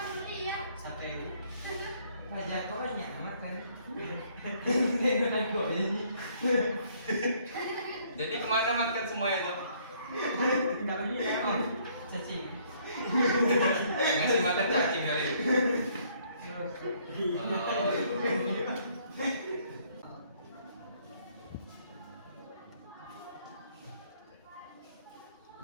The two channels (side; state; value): both; inverted; correlation -0.64